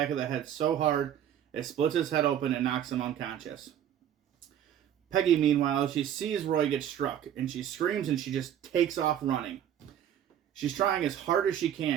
of the head so hard it splits his head open and knocks him unconscious. Peggy, meanwhile, she sees Roy get struck, and she screams and she just takes off running. She's trying as hard as she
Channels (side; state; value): left; quieter; 10.2 dB